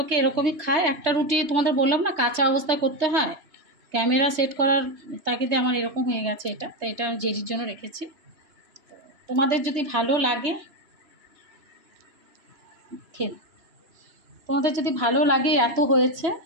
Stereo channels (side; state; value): left; late; 3.2 ms